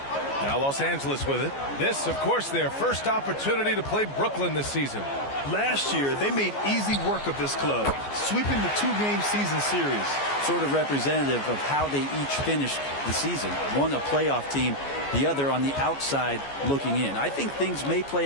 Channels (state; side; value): late; right; 14 ms